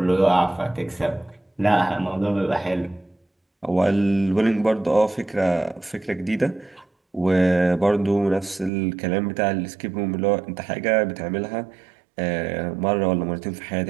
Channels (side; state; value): left; drops out; at 8.7 s